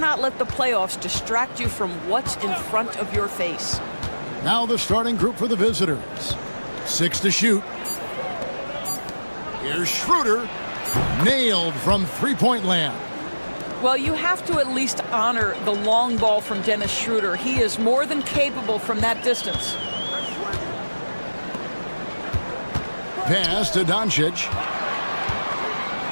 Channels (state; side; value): inverted; both; correlation -1.00